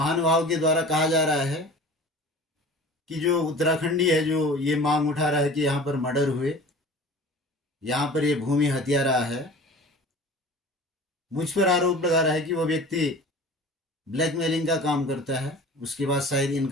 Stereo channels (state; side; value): normal; both; correlation 0.41